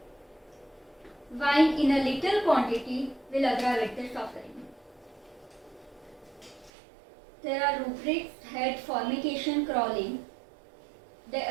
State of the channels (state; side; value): drops out; left; at 6.7 s